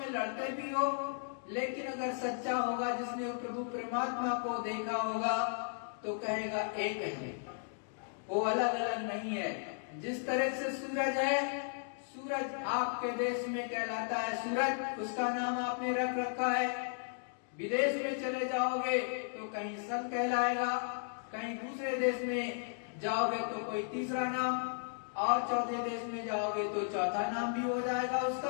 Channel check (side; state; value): right; silent; digital silence